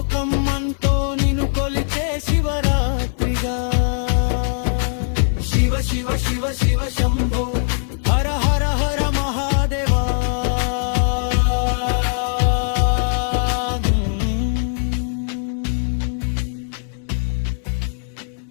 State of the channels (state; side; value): silent; right; digital silence